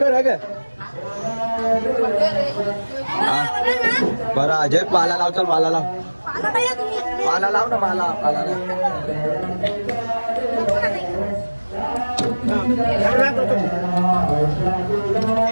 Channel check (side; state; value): both; inverted; correlation -1.00